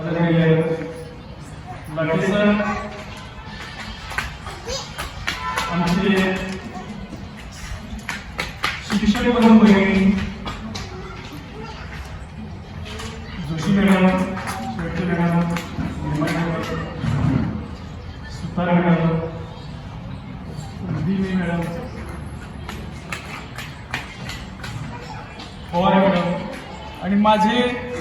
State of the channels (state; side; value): identical; both; correlation 1.00